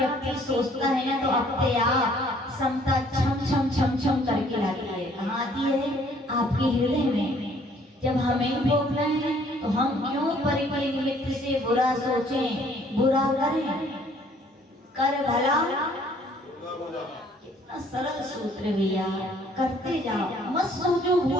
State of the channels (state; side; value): normal; both; correlation 0.60